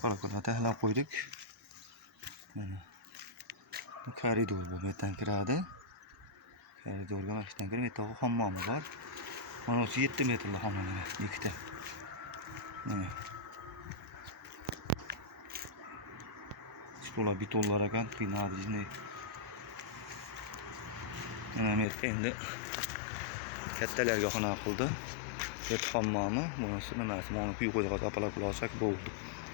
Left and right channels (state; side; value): drops out; right; at 21.9 s